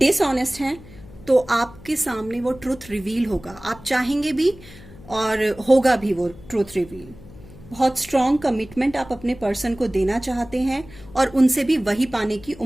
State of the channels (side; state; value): left; noise; hum, 19 dB below the sound